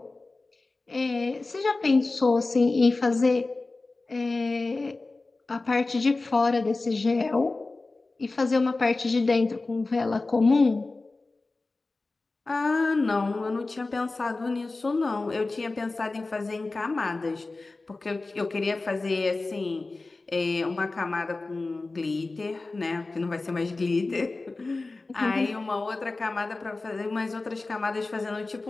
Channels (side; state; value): right; quieter; 3.4 dB